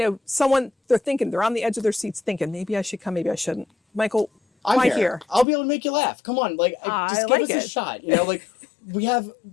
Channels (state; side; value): drops out; right; at 5.5 s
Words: on the edge of their seats thinking, maybe I should come, maybe I shouldn't. Michael, why here? I'll be able to make you laugh. Come on. Just give us a shot.